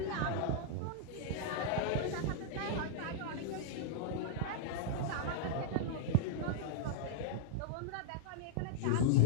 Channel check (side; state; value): both; different; correlation -0.01